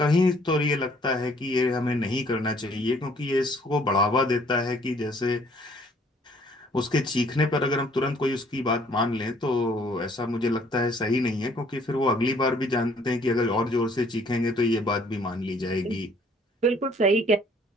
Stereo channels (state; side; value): normal; both; correlation 0.60